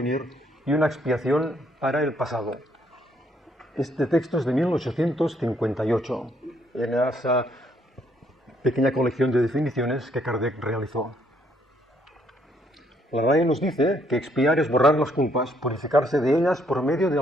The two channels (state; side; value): normal; both; correlation 0.69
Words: y una expiación para el pasado. Este texto es de 1858, en esa pequeña colección de definiciones que Kardec realizó. La RAE nos dice que expiar es borrar las culpas, purificarse de ellas por medio de